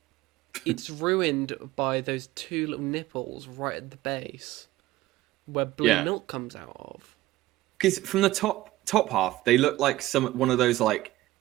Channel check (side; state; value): left; quieter; 16.8 dB